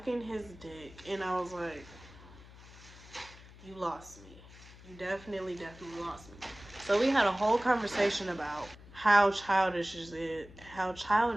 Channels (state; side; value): noise; left; hum, 19 dB below the sound